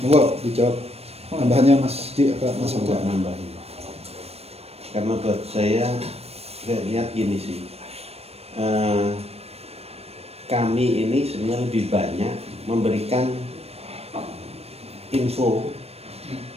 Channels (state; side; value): late; left; 0.29 ms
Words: Monggo dijawab. Tambahannya Mas Enggak nambahin. Karena buat saya lihat gini sih. Kami ini sebenarnya lebih banyak memberikan info